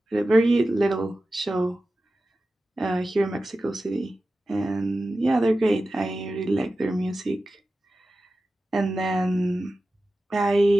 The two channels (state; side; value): normal; both; correlation 0.94